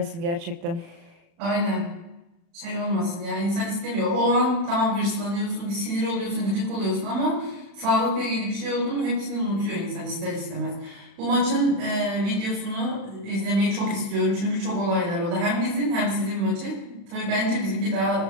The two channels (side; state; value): left; late; 36 ms